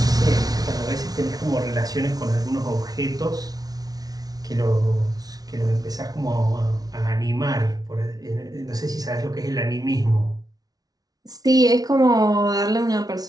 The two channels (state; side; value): late; left; 0.18 ms